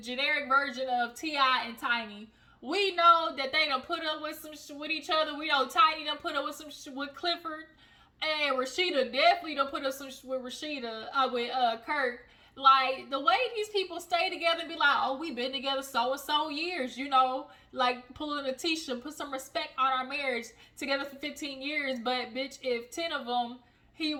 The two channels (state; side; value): identical; both; correlation 1.00